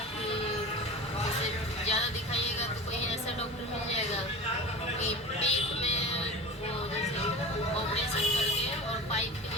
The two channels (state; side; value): normal; both; correlation 0.33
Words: कि इसे ज़्यादा दिखाइएगा तो कोई ऐसा डॉक्टर मिल जाएगा कि पेट में वो जैसे ऑपरेशन करके और पाइप के